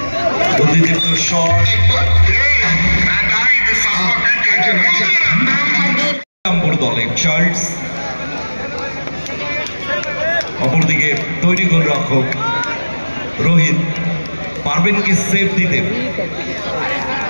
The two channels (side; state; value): both; inverted; correlation -1.00